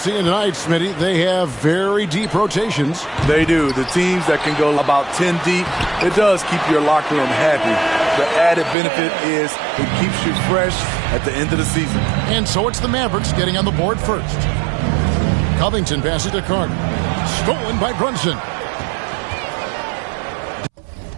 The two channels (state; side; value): drops out; left; at 8.8 s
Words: tonight, Smitty, they have very deep rotations. They do. The teams that can go about 10 deep, it does keep your locker room happy. The added benefit is it keeps you fresh at the end of the season. And so it's the Mavericks getting on the board first. Covington passes to Carter. Stolen by Brunson.